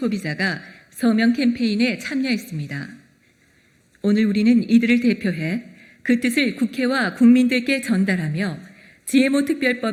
서명 캠페인에 참여했습니다. 오늘 우리는 이들을 대표해 그 뜻을 국회와 국민들께 전달하며 GMO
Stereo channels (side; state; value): both; identical; correlation 1.00